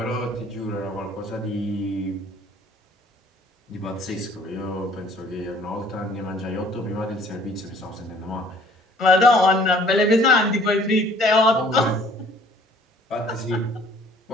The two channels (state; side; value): normal; both; correlation 0.55